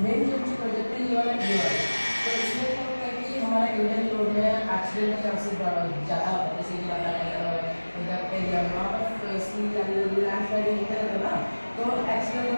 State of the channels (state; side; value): inverted; both; correlation -1.00